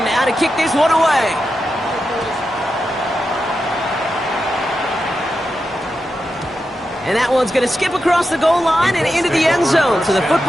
now to kick this one away. And that one's going to skip across the goal line and into the end zone. So the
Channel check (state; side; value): normal; both; correlation 0.89